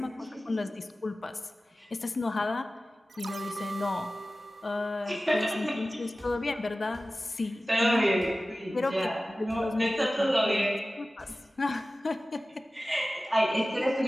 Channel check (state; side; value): normal; both; correlation 0.96